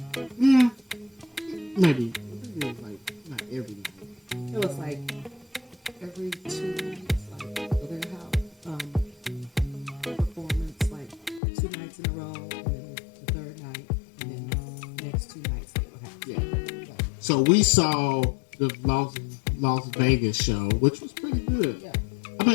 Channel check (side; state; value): right; drops out; at 11.4 s